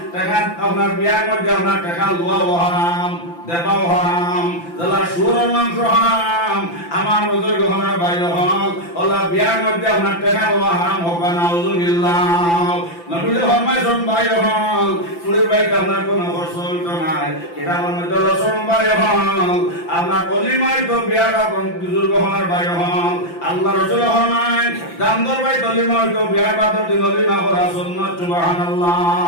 টাকা আপনার বিয়ার মধ্যে আপনার টাকা লওয়া হারাম দেবাও হারাম যারা সুর মাংস হারাম আমার বুজুর্গ হনার বাইরে হন ওলা বিয়ার মধ্যে আপনার টাকা লওয়া হারাম হোকা নাউজুবিল্লাহ নবী ফরমাইছেন বাইরে হন ফুলের বাইতে আপনার কোনো খরচ হইতো নাই এটা আমার মধ্যে লসন বাইরে হন আপনার কলিমায় তো বিয়াটা বুজুর্গ হনার বাইরে হন আল্লাহ রাসূল ফরমায় দামদর বাই কলিমা হইতো বিয়ার বাদর দিন কলিমা করা সুন্নাত সুবহানাল্লাহ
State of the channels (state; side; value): late; right; 5.9 ms